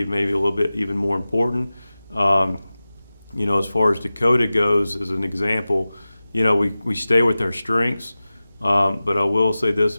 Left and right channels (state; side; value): inverted; both; correlation -0.96